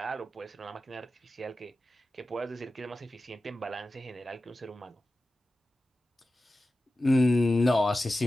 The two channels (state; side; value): normal; both; correlation 0.94